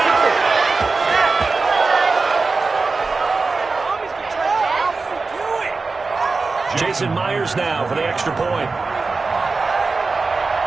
Jason Myers now for the extra point.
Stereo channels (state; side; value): quieter; left; 4.0 dB